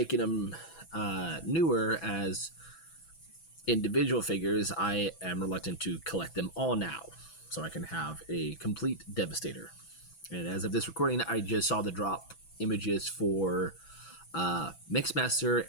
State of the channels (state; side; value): late; right; 6.1 ms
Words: them newer as individual figures, I am reluctant to collect them all now. So I can have a complete Devastator. And as of this recording, I just saw the drop images for Mixmaster